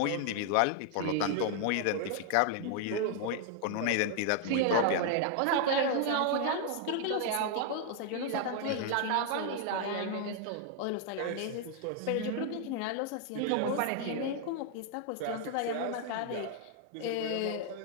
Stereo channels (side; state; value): both; different; correlation 0.00